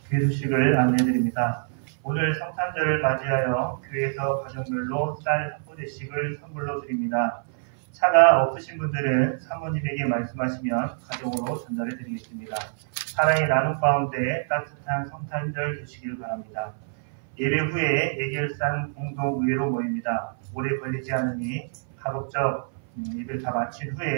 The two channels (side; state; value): left; silent; 58 dB below the other